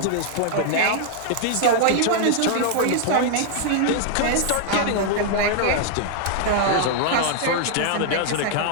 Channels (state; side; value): different; both; correlation -0.01